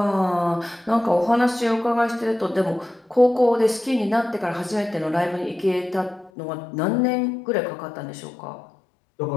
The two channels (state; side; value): drops out; right; at 6.3 s